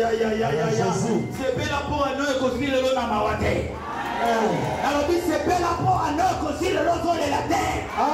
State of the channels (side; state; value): both; identical; correlation 1.00